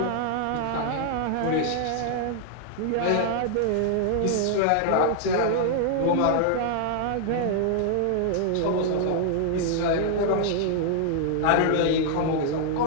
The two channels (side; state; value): both; different; correlation 0.00